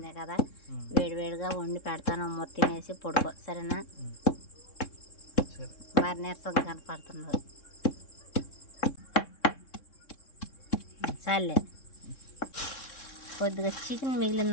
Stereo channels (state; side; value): late; right; 3.7 ms